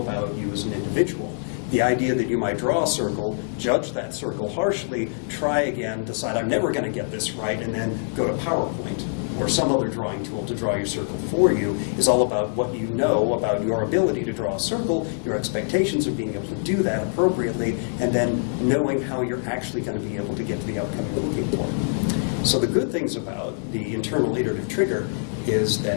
you as an individual. The idea that you might draw a circle, judge that circle harshly, try again, decide I'm never going to get this right, and then go to PowerPoint or some other drawing tool to draw your circle for you is all about what you know about your ability to draw a circle, your expectations of being able to do that appropriately, and then knowing how you're actually going to be able to get to the outcome you're looking for. So the good things about the internal iterative trigger is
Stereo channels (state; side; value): silent; right; digital silence